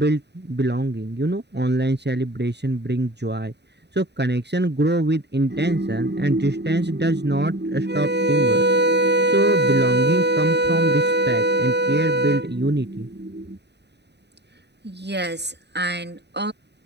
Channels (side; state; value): left; late; 0.50 ms